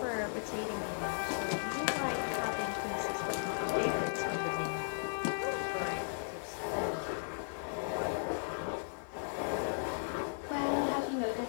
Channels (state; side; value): silent; right; 54 dB below the other